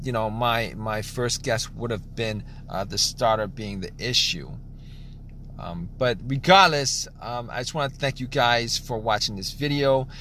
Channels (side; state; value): both; identical; correlation 1.00